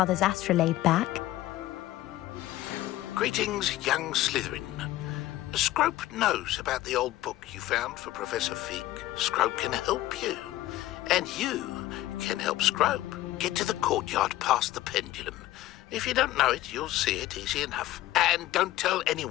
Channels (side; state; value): right; quieter; 15.5 dB